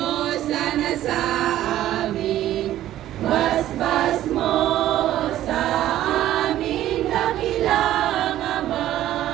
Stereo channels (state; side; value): quieter; left; 13.2 dB